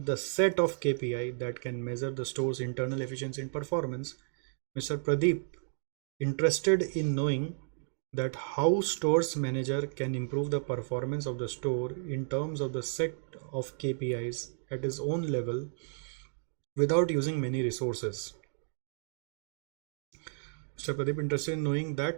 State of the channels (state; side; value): silent; left; digital silence